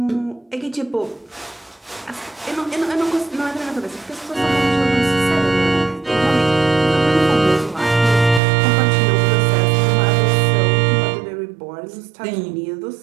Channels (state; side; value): drops out; left; at 8.4 s